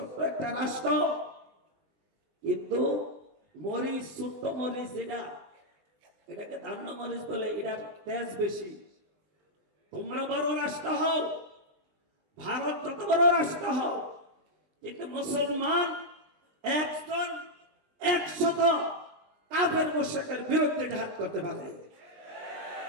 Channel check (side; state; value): left; late; 20 ms